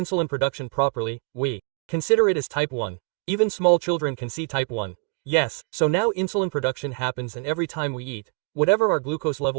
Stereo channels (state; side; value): quieter; left; 36.1 dB